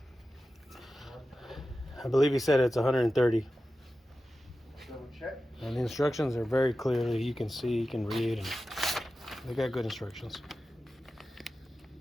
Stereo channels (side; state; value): both; normal; correlation 0.93